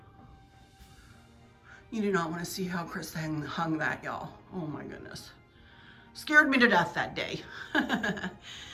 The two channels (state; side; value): identical; both; correlation 1.00